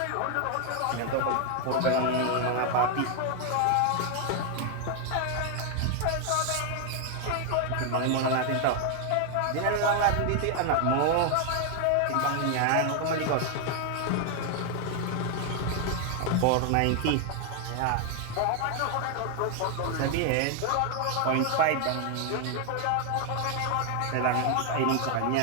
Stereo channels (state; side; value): different; both; correlation 0.00